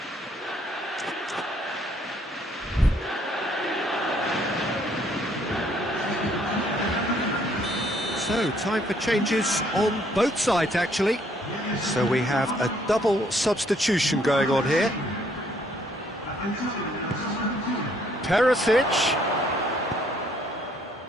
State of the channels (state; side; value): normal; both; correlation 0.66